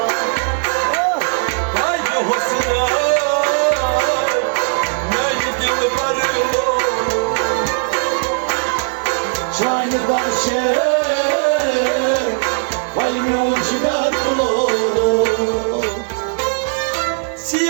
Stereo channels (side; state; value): left; silent; 57 dB below the other